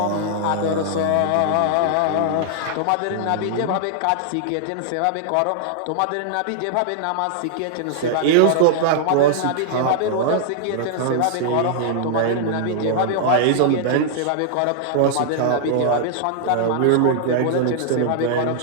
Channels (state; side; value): different; both; correlation -0.01